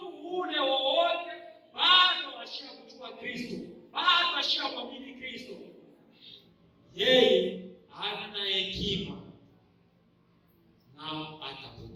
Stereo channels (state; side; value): identical; both; correlation 1.00